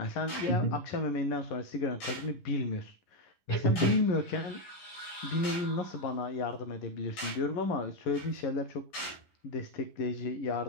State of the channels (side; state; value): right; late; 11 ms